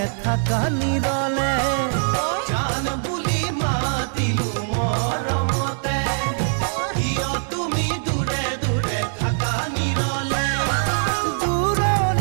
থাকা নিৰলে। জান বুলি মাতিলো মৰমতে, কিয় তুমি দূৰে দূৰে থাকা নিৰলে।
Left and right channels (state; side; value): silent; left; digital silence